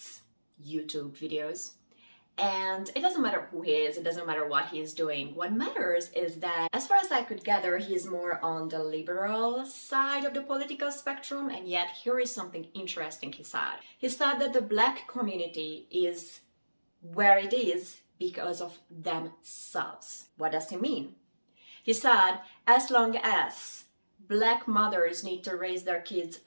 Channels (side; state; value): both; inverted; correlation -1.00